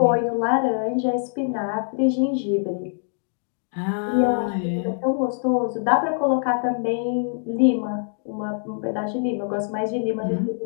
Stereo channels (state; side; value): silent; right; digital silence